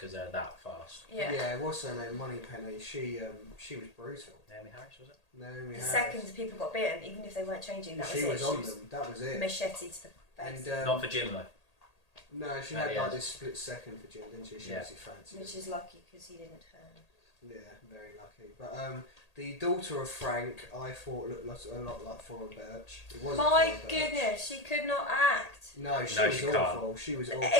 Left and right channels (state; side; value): late; right; 1.8 ms